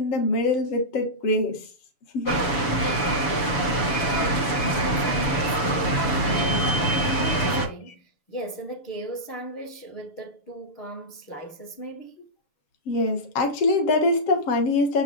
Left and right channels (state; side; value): late; right; 7.0 ms